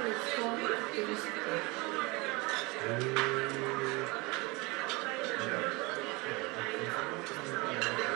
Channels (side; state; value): left; quieter; 25.5 dB